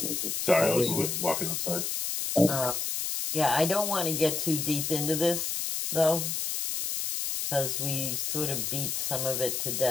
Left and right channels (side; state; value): left; noise; hiss, 1 dB below the sound